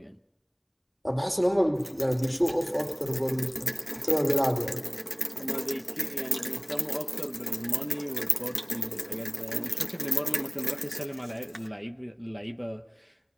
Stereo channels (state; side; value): identical; both; correlation 1.00